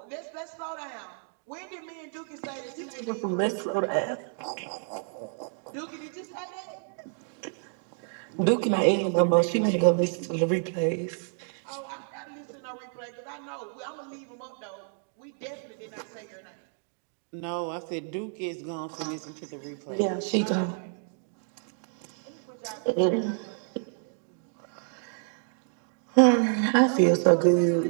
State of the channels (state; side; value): silent; left; 58 dB below the other